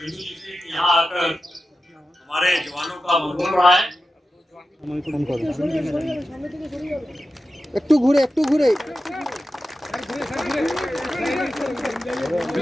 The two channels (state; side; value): normal; both; correlation 0.92